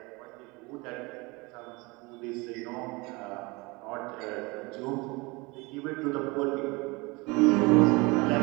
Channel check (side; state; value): left; quieter; 25.5 dB